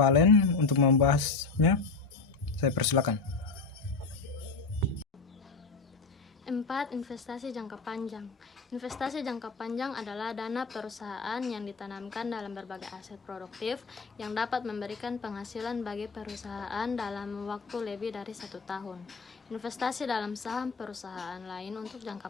untuk membahasnya. Saya persilakan. 4. Investasi jangka panjang. Investasi jangka panjang adalah dana perusahaan yang ditanamkan dalam berbagai aset produktif yang dapat memberikan penghasilan bagi perusahaan dalam waktu lebih dari 1 tahun. Investasi dalam saham perusahaan lain untuk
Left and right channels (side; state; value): right; quieter; 4.3 dB